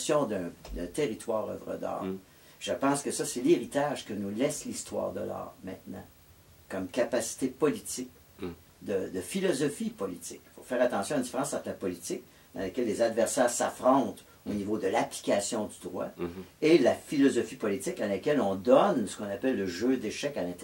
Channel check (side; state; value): both; identical; correlation 1.00